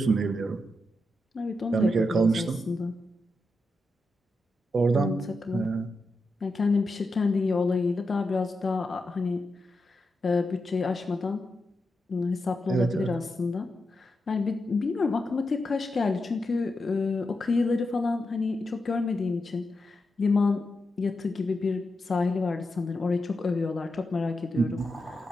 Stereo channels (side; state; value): both; normal; correlation 0.87